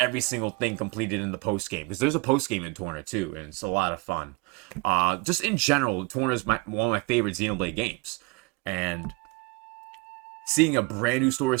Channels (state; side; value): quieter; left; 25.8 dB